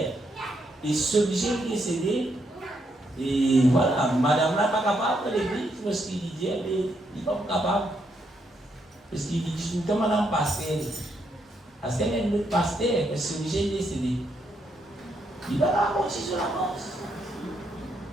Et ce riche qui est décédé, et voilà, madame là n'est pas capable de l'église, parce qu'il dit, il n'est pas capable. Parce qu'il dit, tout le temps, madame pasteur. Parce qu'elle est notre pasteur, parce que ce riche est décédé. Il va raconter sur la mort.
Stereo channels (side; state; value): both; normal; correlation 0.77